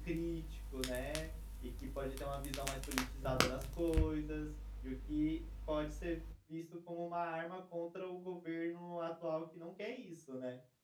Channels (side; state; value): both; identical; correlation 1.00